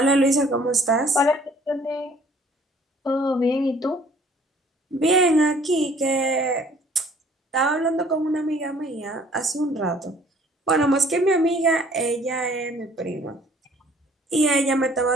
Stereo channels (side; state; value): both; normal; correlation 0.57